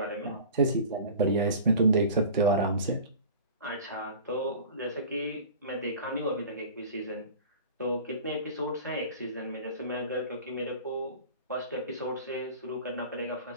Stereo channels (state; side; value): inverted; both; correlation -0.39